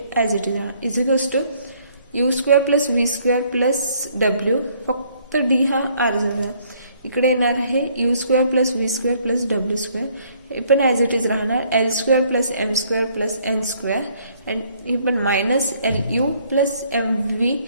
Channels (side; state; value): both; inverted; correlation -0.64